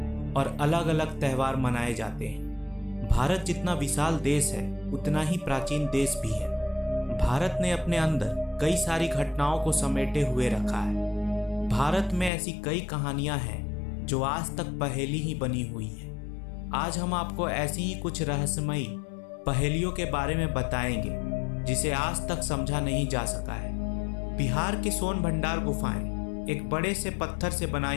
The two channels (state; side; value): drops out; right; at 12.3 s